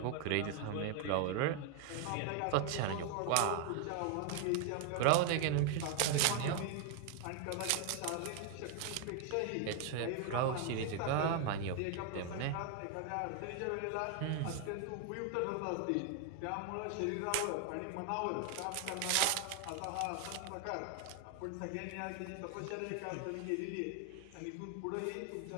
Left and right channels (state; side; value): different; both; correlation 0.00